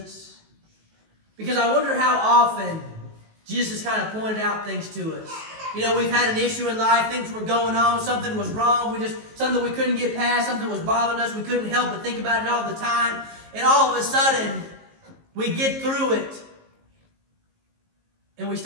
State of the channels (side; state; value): left; late; 19 ms